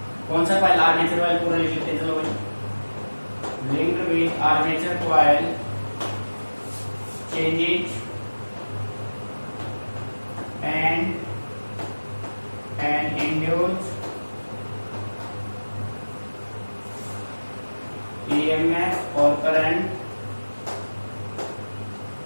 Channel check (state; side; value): inverted; both; correlation -1.00